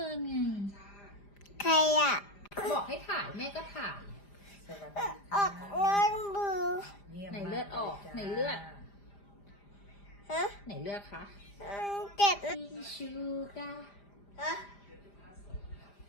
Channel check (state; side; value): late; right; 5.0 ms